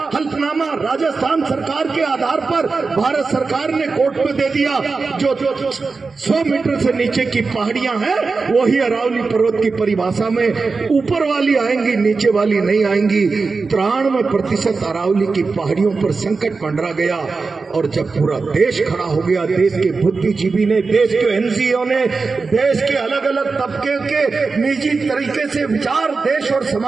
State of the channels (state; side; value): quieter; left; 4.3 dB